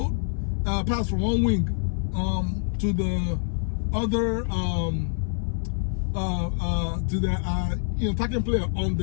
pass from one wing to the other to the you know, attacking player on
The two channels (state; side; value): silent; right; 58 dB below the other